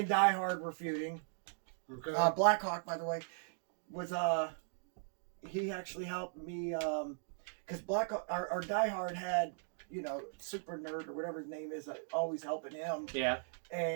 Die Hard were feuding. Okay. Blackhawk, by the way, was he actually helped me because Blackhawk, our Die Hard had, you know, Super Nerd or whatever his name is, always helping him. Yeah.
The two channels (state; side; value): silent; left; digital silence